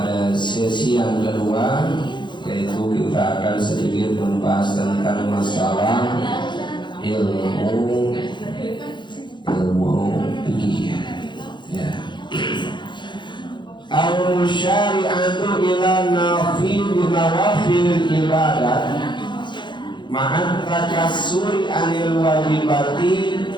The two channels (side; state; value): right; late; 0.22 ms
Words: sesi yang kedua, yaitu kita akan sedikit membahas tentang masalah ilmu fikih. Ya. Al-syari'atu ila nawafil ibadat ma'at takassuri anil wajibati